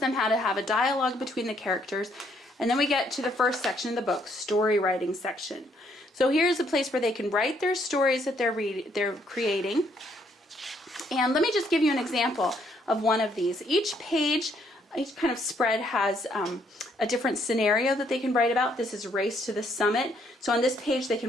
how to have a dialogue between the characters. And then we get to the first section of the book, story writing section. So here's a place where they can write their stories that they're creating. And let me just give you an example of one of these. Each page, each kind of spread has a different scenario that they can write about. This is Race to the Summit. So on this page they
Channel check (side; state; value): both; normal; correlation 0.70